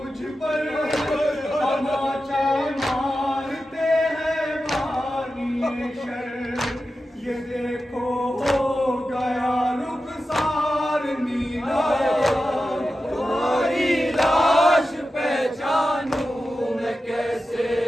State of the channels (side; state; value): both; normal; correlation 0.92